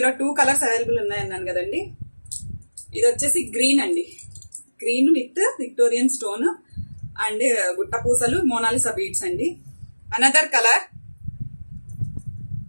2 కలర్స్ అవైలబుల్ ఉన్నాయన్నాను కదండి. ఇది వచ్చేసి గ్రీన్ అండి, green with Victorian stone and గుట్ట పూసలు మోనాలిసా బీడ్స్ అండి. అనదర్ కలర్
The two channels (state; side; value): inverted; both; correlation -1.00